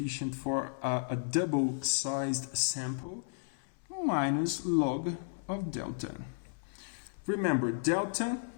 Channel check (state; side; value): silent; right; 55 dB below the other